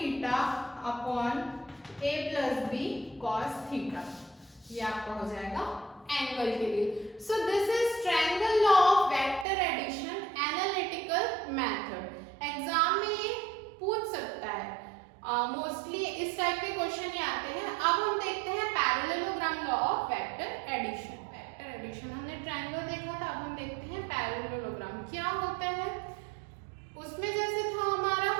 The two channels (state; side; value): drops out; left; at 9.5 s